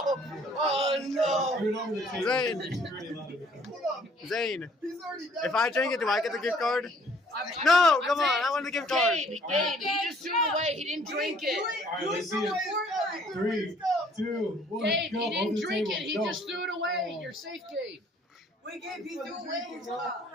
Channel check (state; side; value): normal; both; correlation 0.60